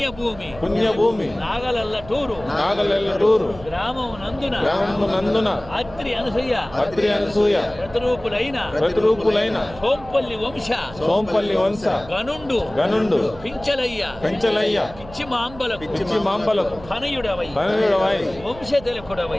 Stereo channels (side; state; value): right; noise; hum, 17 dB below the sound